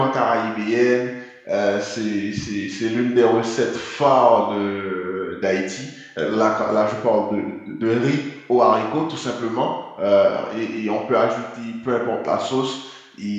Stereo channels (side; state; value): both; identical; correlation 1.00